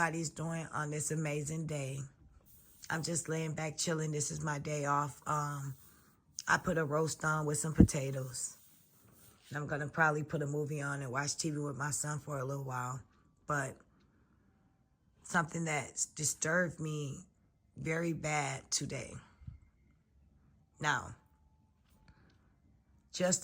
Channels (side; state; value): both; identical; correlation 1.00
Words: doing on this amazing day. I'm just laying back chilling. This is my day off. I put a roast on with some potatoes. And I'm going to probably put a movie on and watch TV with my son for a little while. But something that disturbed me very bad today. Now, just